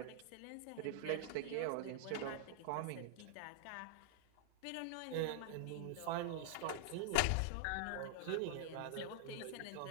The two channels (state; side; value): different; both; correlation 0.00